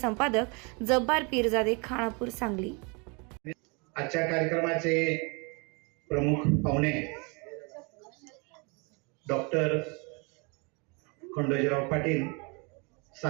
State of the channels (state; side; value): quieter; left; 31.4 dB